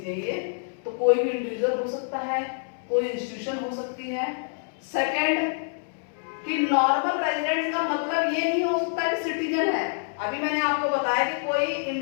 तो कोई भी इंडिविजुअल हो सकता है, कोई इंस्टीट्यूशन हो सकती है। सेकंड कि नॉर्मल रेजिडेंट्स का मतलब ये नहीं हो सकता कि सिटीजन है। अभी मैंने आपको बताया कि कोई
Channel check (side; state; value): right; silent; 61 dB below the other